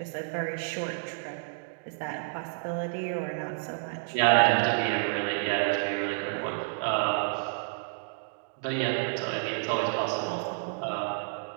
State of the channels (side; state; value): left; silent; digital silence